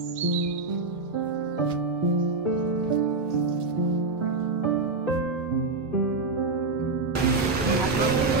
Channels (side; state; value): left; quieter; 3.7 dB